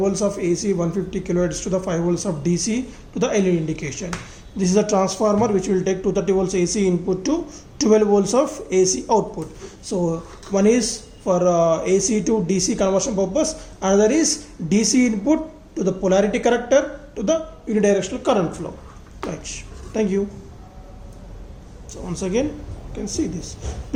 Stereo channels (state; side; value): identical; both; correlation 1.00